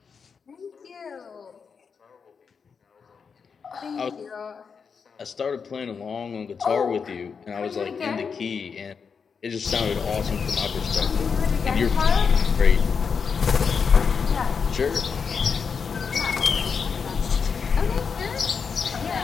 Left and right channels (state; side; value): quieter; right; 5.9 dB